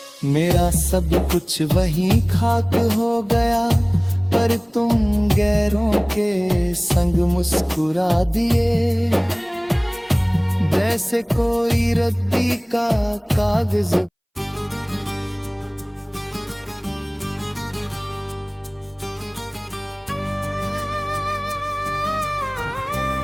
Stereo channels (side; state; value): both; identical; correlation 1.00